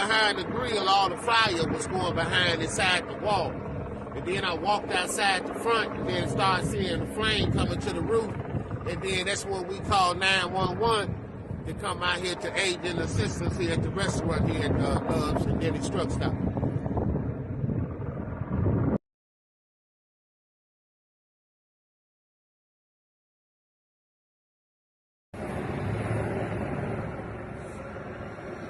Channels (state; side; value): identical; both; correlation 1.00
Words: the grill, all the fire was going behind inside the wall. And then I walked outside the front and then started seeing the flame coming to the roof. And then that's when we called 911 to come out here to aid in assistance here at the restaurant here at Love's and Dennys Truck Stop.